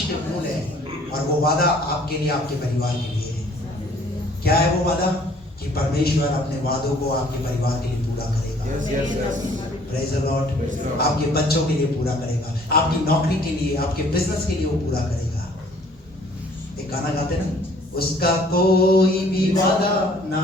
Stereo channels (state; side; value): normal; both; correlation 0.57